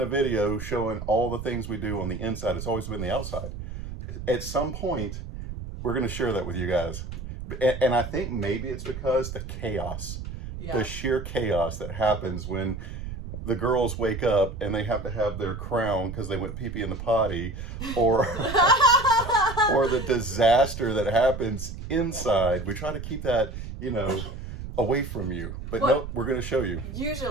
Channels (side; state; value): right; noise; rumble, 8 dB below the sound